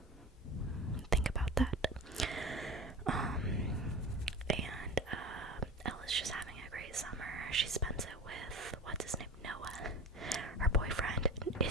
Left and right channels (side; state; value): both; normal; correlation 0.31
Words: Think about that. And Ella's just having a great summer. She spends it with, what's his name? Noah. Her boyfriend